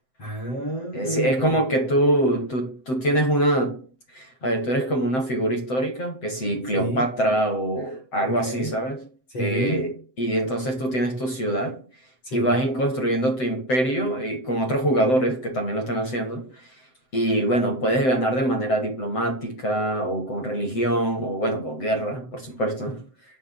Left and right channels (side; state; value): right; late; 7.8 ms